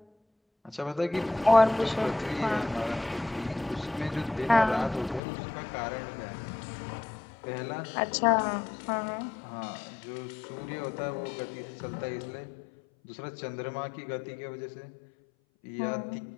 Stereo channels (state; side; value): drops out; right; at 5.2 s